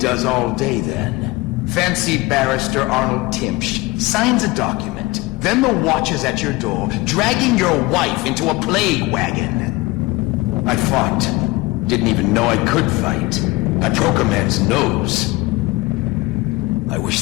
all day then. Fancy Barrister Arnold Timsh signs a document, then the watch is at your door, dragging your wife into a plague wagon. I fought. Didn't even know I could fight. I broke a man's nose. I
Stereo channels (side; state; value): right; quieter; 21.9 dB